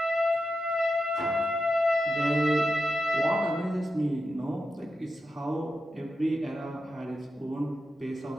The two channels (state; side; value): normal; both; correlation 0.89